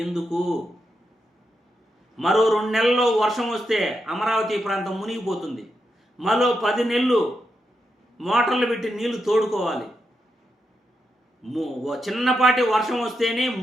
ఎందుకు? మరో 2 నెలల్లో వర్షం వస్తే అమరావతి ప్రాంతం మునిగిపోతుంది. మరో 10 నెలలు మోటార్లు పెట్టి నీళ్లు తోడుకోవాలి. చిన్నపాటి వర్షం వస్తేనే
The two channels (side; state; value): both; normal; correlation 0.85